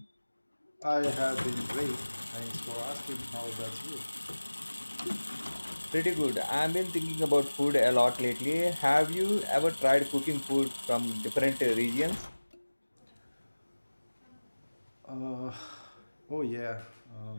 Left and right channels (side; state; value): both; inverted; correlation -1.00